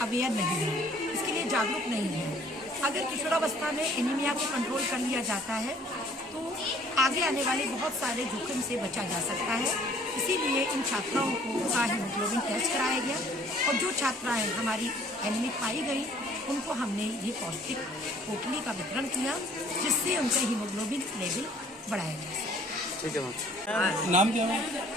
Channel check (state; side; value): normal; both; correlation 0.57